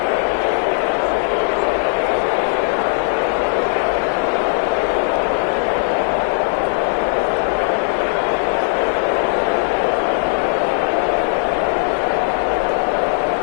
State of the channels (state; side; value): silent; right; 60 dB below the other